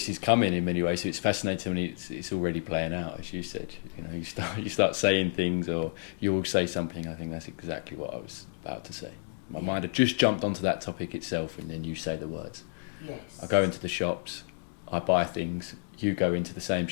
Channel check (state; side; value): silent; right; digital silence